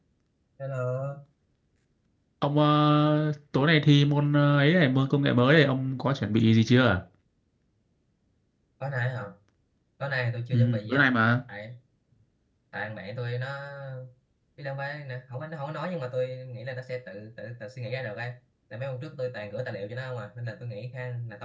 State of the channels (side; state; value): both; identical; correlation 1.00